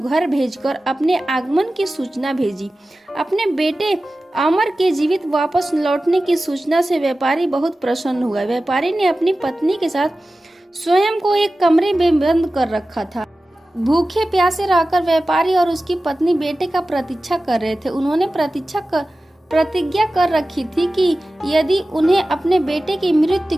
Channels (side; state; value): both; normal; correlation 0.95